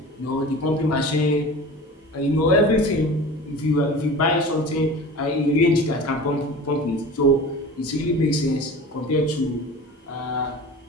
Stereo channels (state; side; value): normal; both; correlation 0.37